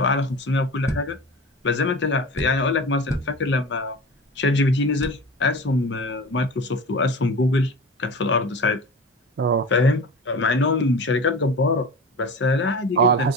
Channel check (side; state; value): both; normal; correlation 0.33